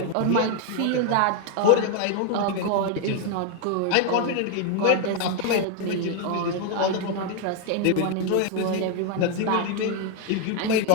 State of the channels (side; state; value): both; different; correlation 0.00